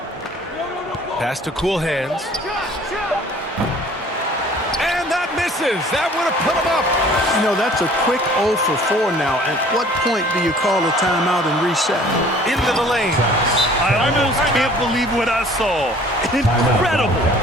Pass to Cool Hands. And that misses. That would have put him up. You know, that's a quick 0 for 4 now. At what point do you call a timeout and reset? Into the lane. I almost can't believe what I saw. Incredible.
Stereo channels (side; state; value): both; normal; correlation 0.52